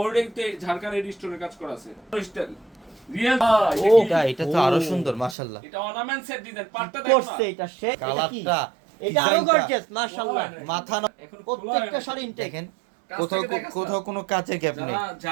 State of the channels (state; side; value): drops out; left; at 5.4 s